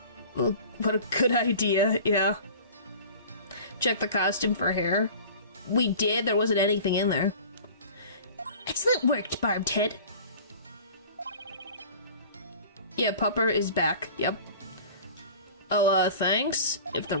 Well, what a good idea, yeah. Check the costume for hair. We did, there wasn't anything in there. Excellent work, Barbed Head. Yeah, Pupper is back, yep. Oh, thanks. If the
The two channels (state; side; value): inverted; both; correlation -0.42